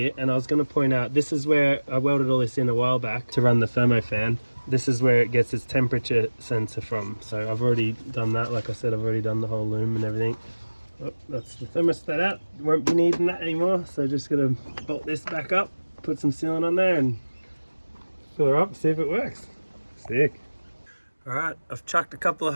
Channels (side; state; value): both; inverted; correlation -1.00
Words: And I was going to point out, this is where I welded all this in a while back to run the thermo fan. This is where it gets its temperature sensor from. So I've already done that. Like I said, I've already done the whole loom and everything. Oh, that's the thermostat out. Won't be needing that anymore. So just gonna bolt this back up, put some sealant on there and fill her up, see if it works. Sick. All right, I've chucked a couple of